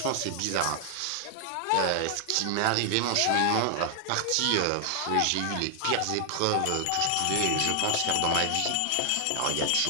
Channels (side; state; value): both; different; correlation 0.00